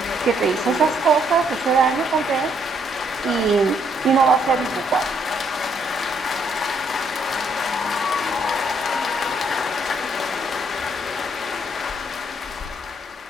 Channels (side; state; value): both; normal; correlation 0.70